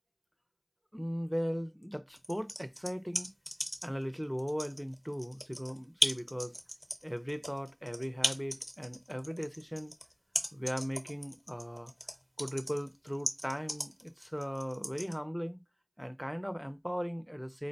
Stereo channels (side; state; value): both; identical; correlation 1.00